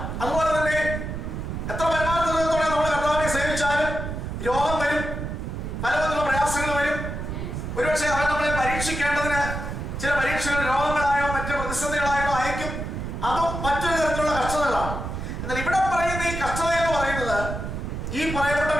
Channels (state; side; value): noise; right; rumble, 5 dB below the sound